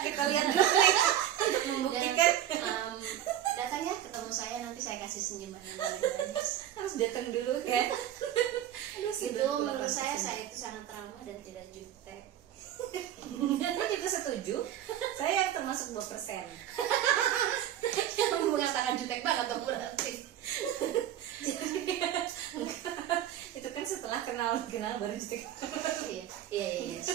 lihat dulu untuk membuktikan. Datangnya ketemu saya, nanti saya kasih senyuman yang paling manis. Harus datang dulu kan. Itu menurut saya itu sangat trauma dan tidak jutek. Saya juga setuju. Saya yang termasuk 2%. Yang mengatakan jutek banget dong berarti. Itu kan setelah kenal baru jutek. Iya.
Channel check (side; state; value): left; quieter; 11.4 dB